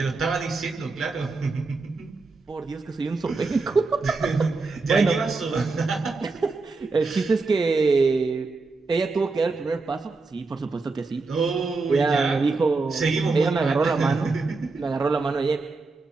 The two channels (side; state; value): left; quieter; 3.9 dB